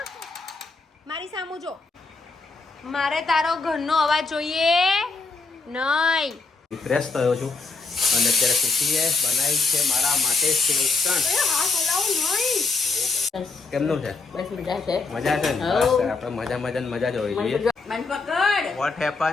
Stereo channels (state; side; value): quieter; right; 4.1 dB